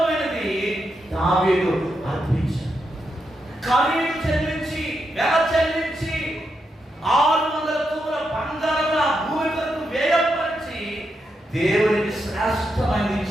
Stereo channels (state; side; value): normal; both; correlation 0.84